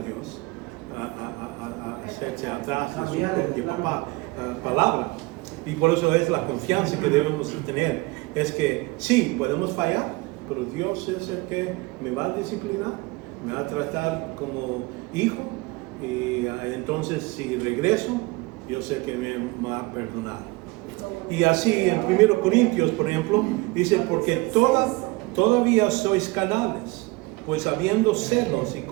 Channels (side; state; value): left; quieter; 23.6 dB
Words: hacerse atrás de su propia palabra. Y por eso es la confianza que debemos tener. Es que sí, podemos fallar, pero Dios es el que me va a disciplinar, me va a tratar como hijo. Y entonces si regreso, yo sé que me va a perdonar. Y así en 1 Corintios, por ejemplo, dice, porque todavía sois carnales, pues habiendo celos y